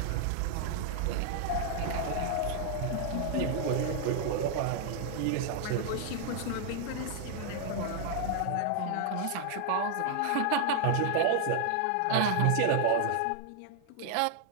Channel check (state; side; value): different; both; correlation 0.00